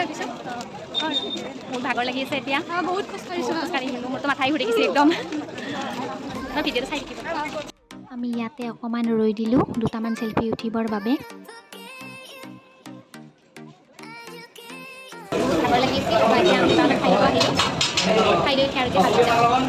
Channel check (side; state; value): both; identical; correlation 1.00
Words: ভাবিছোঁ। মোৰ ভাগৰ লাগি আছে এতিয়া, বহুত খোজকাঢ়িছোঁ, মোৰতো মাথাই ঘূৰি গৈছে একদম। ভিডিঅ'টো চাই থাকিব। আমি ইয়াতে অকণমান ৰৈ দিলোঁ দুটামান চেলফি উঠিবৰ বাবে। ভাগৰ লাগি আছে, এতিয়া আমি খাই আহিলোঁ, খাই লৈ